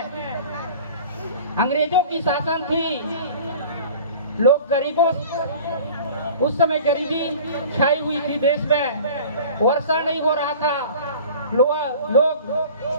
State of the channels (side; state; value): both; inverted; correlation -0.43